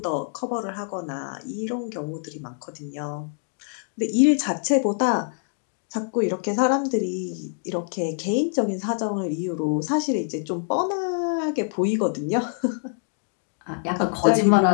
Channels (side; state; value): right; silent; 62 dB below the other